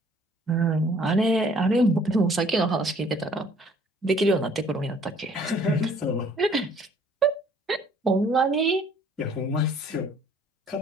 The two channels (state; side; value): normal; both; correlation 0.57